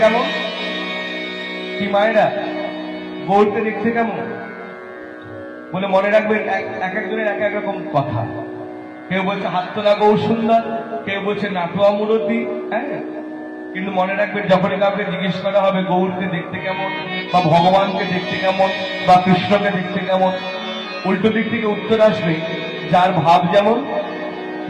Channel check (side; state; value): both; identical; correlation 1.00